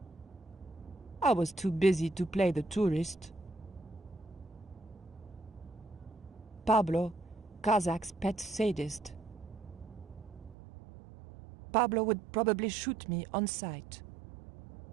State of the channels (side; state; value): left; drops out; at 10.6 s